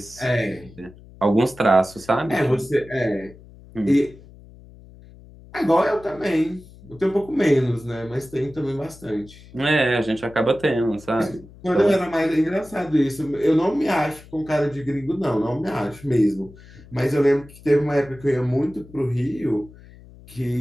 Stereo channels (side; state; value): left; noise; hum, 21 dB below the sound